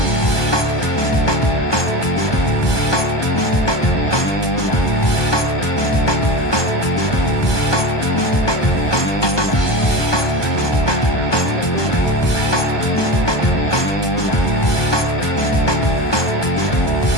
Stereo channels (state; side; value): late; right; 1.2 ms